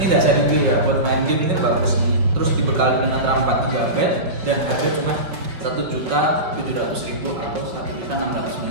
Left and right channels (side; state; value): left; late; 5.4 ms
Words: enggak seri G ya, buat main game ini bagus nih. Terus dibekali dengan RAM 4 GB dan harga cuma 1.700.000 atau